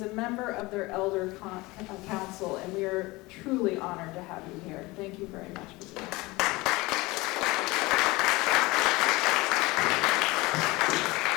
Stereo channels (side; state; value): right; quieter; 21.9 dB